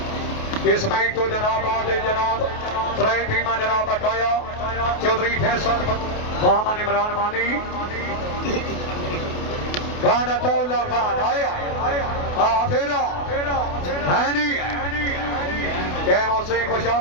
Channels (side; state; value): right; late; 28 ms